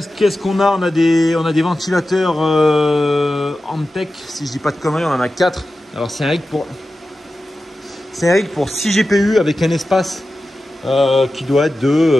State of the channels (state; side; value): normal; both; correlation 0.93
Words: qu'on a? On a des ventilateurs Antec, si je dis pas de conneries, on en a 4. Alors c'est un rig pour 6 GPU avec un espace qui doit être